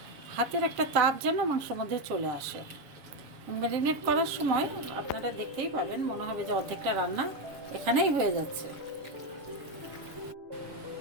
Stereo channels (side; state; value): left; late; 7.4 ms